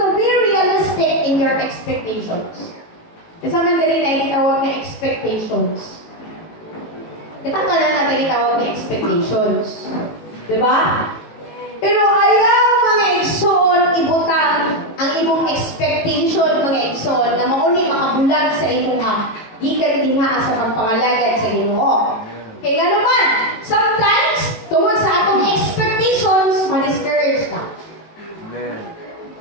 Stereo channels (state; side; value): late; right; 18 ms